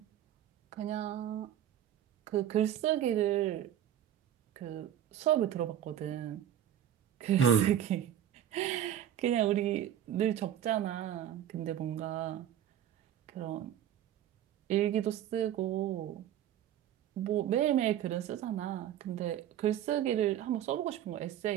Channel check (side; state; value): left; quieter; 10.8 dB